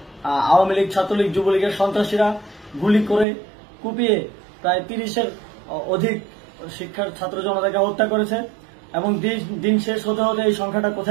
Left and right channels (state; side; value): drops out; left; at 3.2 s